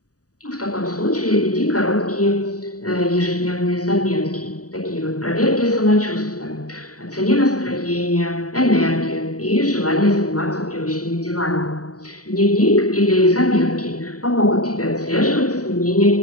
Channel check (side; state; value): right; late; 0.67 ms